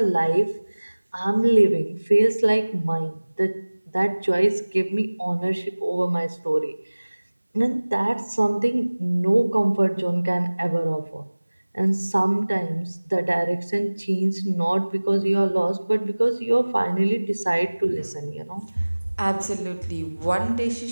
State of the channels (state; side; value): inverted; both; correlation -1.00